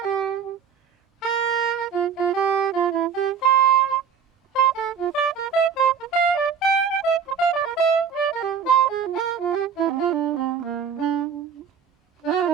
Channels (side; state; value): left; quieter; 6.9 dB